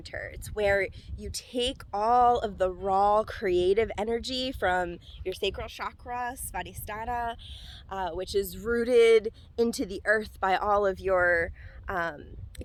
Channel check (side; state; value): both; identical; correlation 1.00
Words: It's where you take all of the raw creative energy from your sacral chakra, Svadhisthana, which is rooted into the earth by all of your